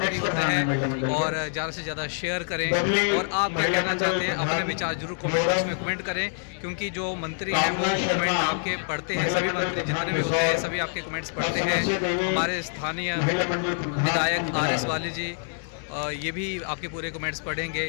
होता है, और ज़्यादा से ज़्यादा शेयर करें। और आप क्या कहना चाहते हैं अपने विचार जरूर कमेंट बॉक्स में कमेंट करें, क्योंकि जो मंत्री हैं वो कमेंट आपके पढ़ते हैं, सभी मंत्री जितने भी होते हैं सभी आपके कमेंट्स पढ़ते हैं। हमारे स्थानीय विधायक RS बाली जी ये भी आपके पूरे कमेंट्स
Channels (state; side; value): silent; right; digital silence